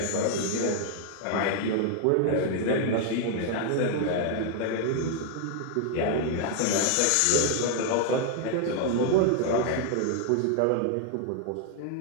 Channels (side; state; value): both; different; correlation 0.00